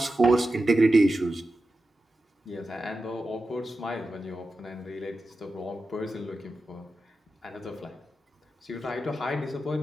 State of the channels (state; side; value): normal; both; correlation 0.92